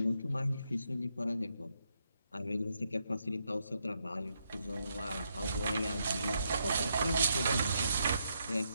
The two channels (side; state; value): both; inverted; correlation -0.79